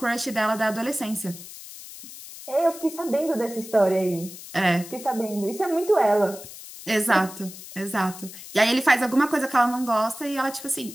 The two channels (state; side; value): noise; left; hiss, 14 dB below the sound